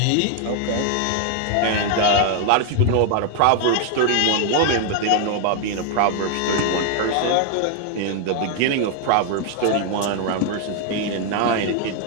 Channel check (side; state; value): both; different; correlation 0.00